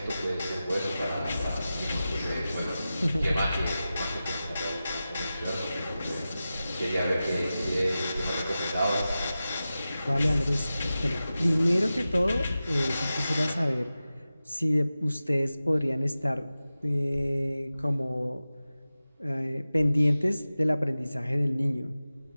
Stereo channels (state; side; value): inverted; both; correlation -0.94